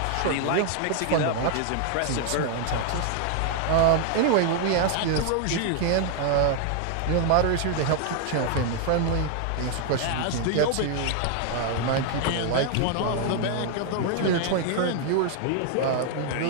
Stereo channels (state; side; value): different; both; correlation 0.00